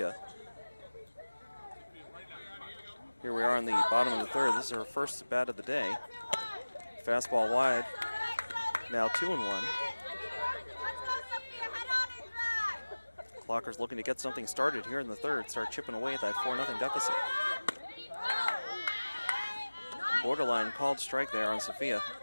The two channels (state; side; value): inverted; both; correlation -1.00